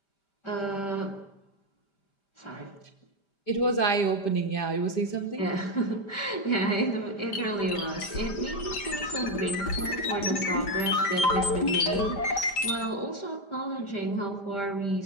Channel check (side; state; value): right; late; 5.0 ms